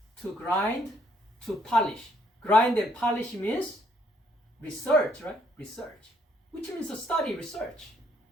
To grind, to polish. Grind and polish means research, right? Research. Which means to study, research.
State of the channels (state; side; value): normal; both; correlation 0.68